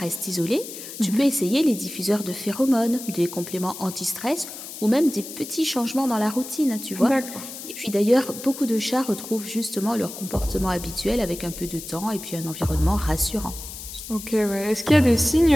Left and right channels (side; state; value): left; noise; hiss, 11 dB below the sound